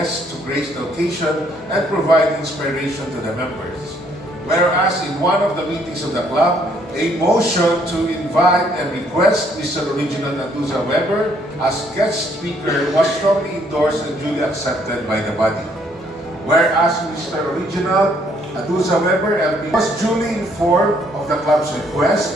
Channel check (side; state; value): both; normal; correlation 0.67